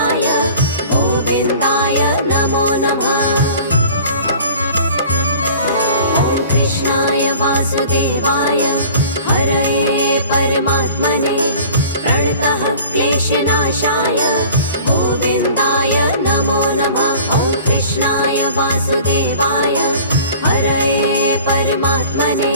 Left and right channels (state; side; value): inverted; both; correlation -0.45